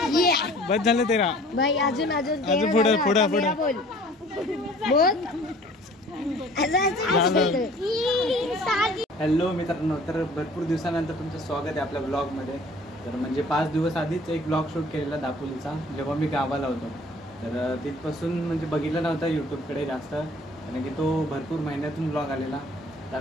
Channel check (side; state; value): both; normal; correlation 0.51